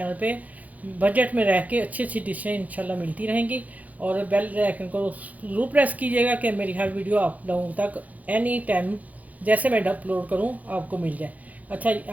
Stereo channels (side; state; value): left; late; 0.076 ms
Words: पे बजट में रह के अच्छी अच्छी डिशें इंशाल्लाह मिलती रहेंगी। और बेल आइकन को ज़रूर प्रेस कीजिएगा कि मेरी हर वीडियो आप लोगों तक एनी टाइम जैसे मैं अपलोड करूं आपको मिल जाए। अच्छा,